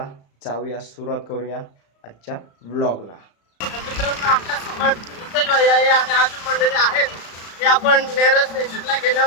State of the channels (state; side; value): late; right; 35 ms